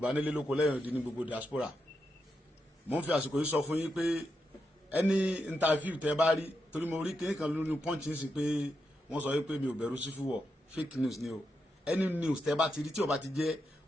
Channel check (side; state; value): both; normal; correlation 0.85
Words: nílé lóko lẹ́yìn odi ní gbogbo diaspora. mo ń fi àsìkò yìí sọ fún yín pé ẹni interview tẹ bá rí torí mo rí kéèké kan lórí punch sí pé wọ́n sọ pé mi ò bẹ̀rù sí fúwọ̀ fake news ni o. any news tẹ bá ti rí tí ò bá ti jẹ́